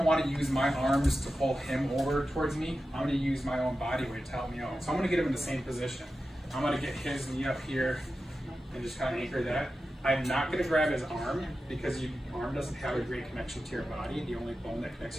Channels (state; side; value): normal; both; correlation 0.92